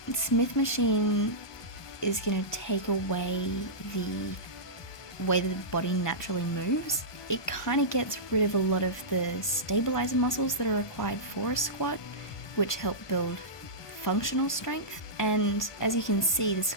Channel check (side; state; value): right; late; 1.2 ms